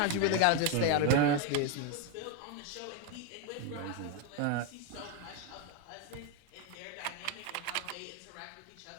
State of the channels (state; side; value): different; both; correlation 0.02